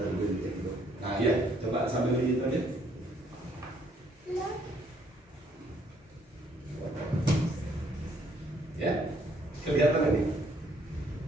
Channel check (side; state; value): both; normal; correlation 0.67